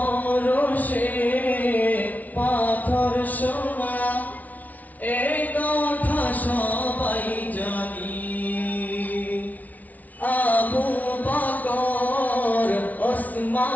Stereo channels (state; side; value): late; right; 0.074 ms